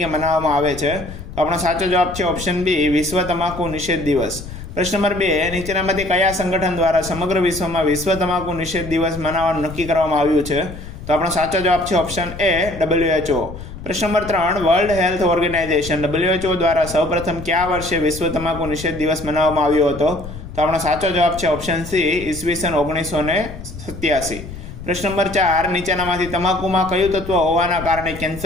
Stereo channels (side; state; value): left; noise; rumble, 12 dB below the sound